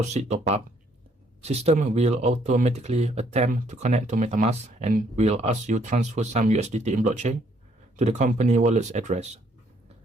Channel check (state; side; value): normal; both; correlation 0.67